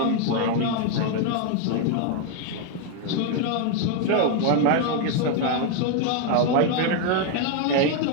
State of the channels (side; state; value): both; different; correlation 0.01